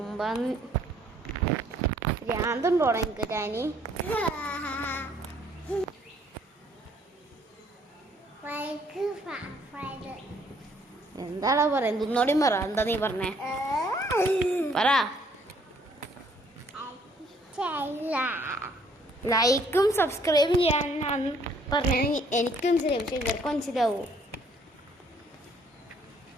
ഭ്രാന്തുണ്ടോടാ എനിക്ക് ടാനി? എന്താടാ പറ, എന്തൊന്നോടെയും പറ. എന്താ നീ പറഞ്ഞേ? പറ. ലൈക്കും സബ്സ്ക്രൈബും ചെയ്യാനാണ് പറഞ്ഞത്. എനിക്ക് മനസ്സിലാവും, പക്ഷെ ഇവർക്ക് മനസ്സിലാവൂ.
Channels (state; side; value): normal; both; correlation 0.63